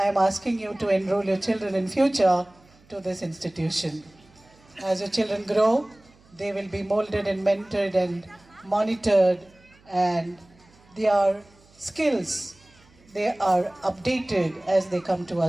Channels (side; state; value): right; noise; hum, 29 dB below the sound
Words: am asking you to enroll your children in future to this institution. As your children grow, they will be molded and mentored and monitored, and their skills, they are updated as they come to